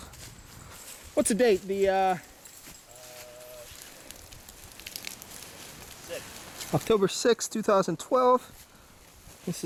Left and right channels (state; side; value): identical; both; correlation 1.00